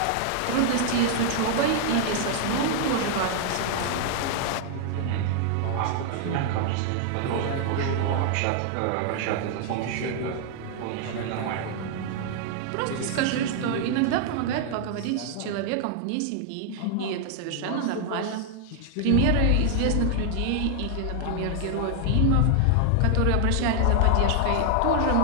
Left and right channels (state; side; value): different; both; correlation 0.00